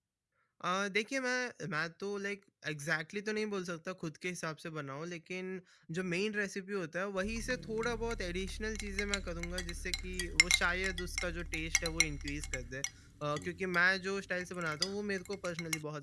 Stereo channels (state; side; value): identical; both; correlation 1.00